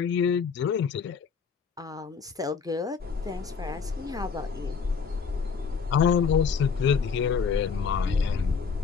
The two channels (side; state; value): right; quieter; 5.8 dB